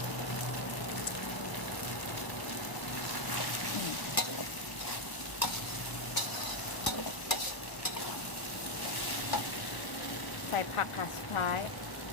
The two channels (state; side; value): late; right; 1.0 ms